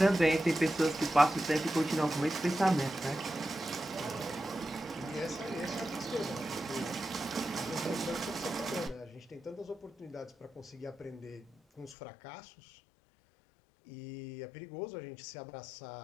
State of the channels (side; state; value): right; drops out; at 12.0 s